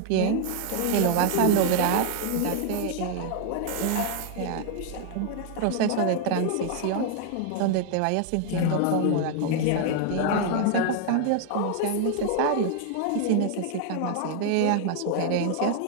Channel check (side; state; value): both; different; correlation 0.00